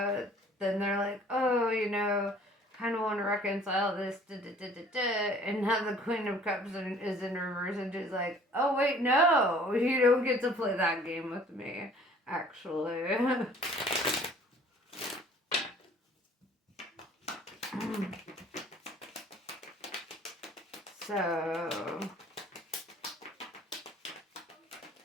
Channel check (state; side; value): normal; both; correlation 0.53